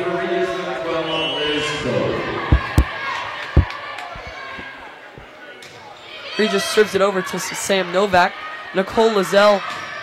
for Regis number 12, Liz Cole. Regis serves it over to Sam Novak. Nicole Lizelle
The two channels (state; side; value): identical; both; correlation 1.00